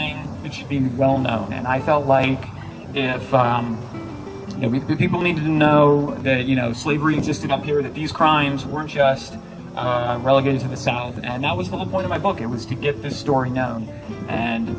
that should be well known. And I felt like if people needed to know that slavery existed up here, that these crimes weren't just relegated to the South, and that was the whole point of my book. It was to get this story known.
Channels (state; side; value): identical; both; correlation 1.00